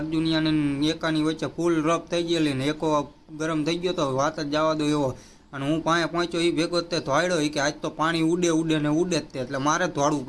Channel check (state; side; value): identical; both; correlation 1.00